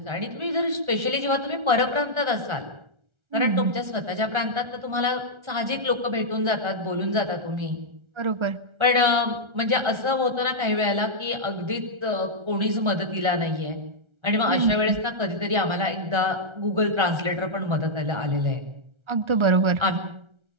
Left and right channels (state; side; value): late; left; 1.3 ms